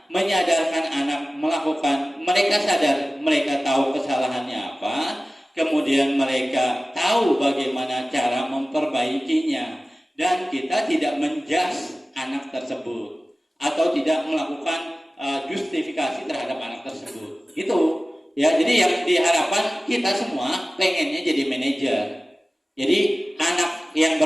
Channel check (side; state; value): both; normal; correlation 0.97